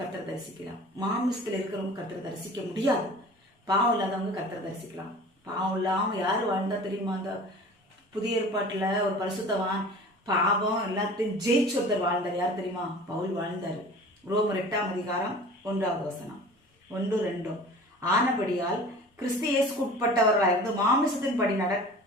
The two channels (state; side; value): normal; both; correlation 0.42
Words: தரிசிக்கலாம். மாமிசத்தில் இருக்கிறவங்க கர்த்தரை தரிசிக்க முடியாது. பாவம் இல்லாதவங்க கர்த்தரை தரிசிக்கலாம். பாவம் இல்லாமல் யார் வாழ்ந்தா தெரியுமா? அந்த புதிய ஏற்பாட்டில் ஒரு பரிசுத்தவான் பாவம் எல்லாத்தையும் ஜெயிச்சு ஒருத்தர் வாழ்ந்தார். யார் தெரியுமா? பவுல் வாழ்ந்தார். ரோமர் 8ஆம் அதிகாரம் 1வது வசனம் 1-2. ஆனபடியால் கிறிஸ்து இயேசுக்கு உட்பட்டவர்களாயிருந்து மாமிசத்தின் படி